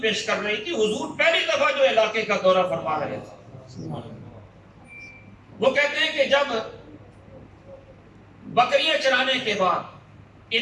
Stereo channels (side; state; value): both; identical; correlation 1.00